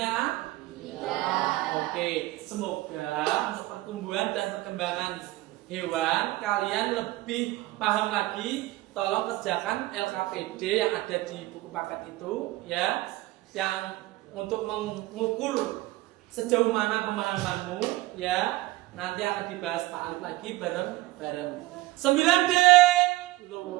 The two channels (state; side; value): quieter; left; 18.7 dB